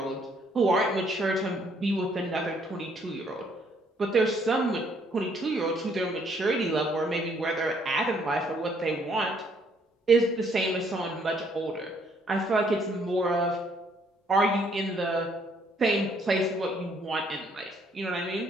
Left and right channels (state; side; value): normal; both; correlation 0.67